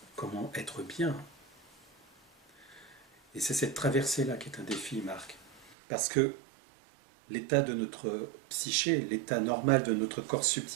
comment être bien? Et c'est cette traversée-là qui est un défi, Marc. Parce que l'état de notre psyché, l'état normal de notre corps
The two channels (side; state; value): left; drops out; at 5.8 s